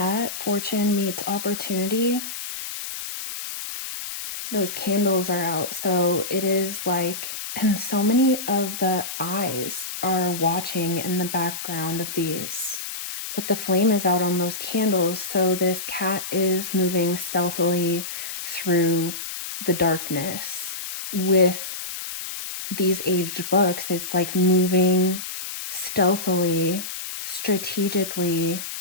fortune meets opportunity. Those candles are out. So it is like, and so many of the eyes are watching in the background of these. But the flame is out on those candles. So this cat is moving stealthily through the darkness. With these aged books, it's like moving stealthily, strategically,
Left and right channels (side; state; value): left; noise; hiss, 7 dB below the sound